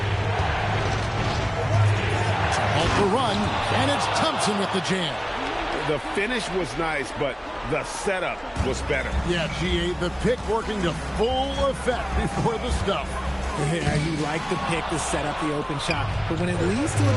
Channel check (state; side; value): identical; both; correlation 1.00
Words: Off the run, and it's Thompson with the jam. The finish was nice, but the setup was better. Yeah, GA, the pick working to full effect before the stuff. Yeah, you like the pick to set up the open shot, but when it leads to